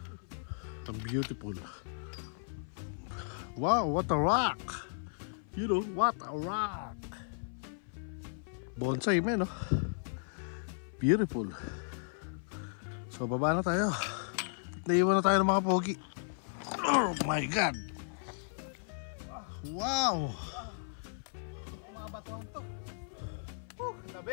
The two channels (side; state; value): right; silent; 54 dB below the other